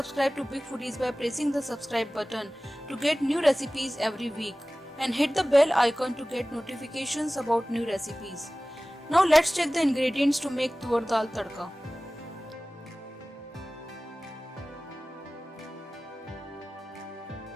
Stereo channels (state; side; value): normal; both; correlation 0.98